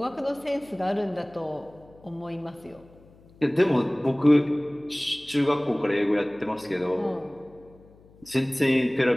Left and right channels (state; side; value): noise; left; hum, 26 dB below the sound